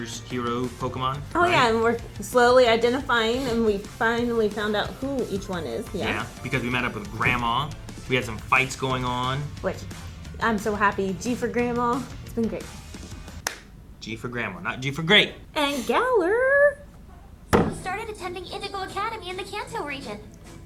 hero Pokemon. Oh right? yeah, and we're slowly identifying, and we finally found out who each one is. Yeah, because we met up with Grandma. We had some fights going on. Which, I'm so happy. G for Grandma. It's been great. G for Grandma, not G for Great. And Galler. We started attending Indigo Academy in the Kanto region.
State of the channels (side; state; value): both; identical; correlation 1.00